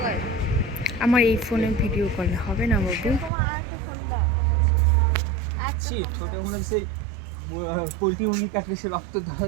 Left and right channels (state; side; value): drops out; left; at 3.3 s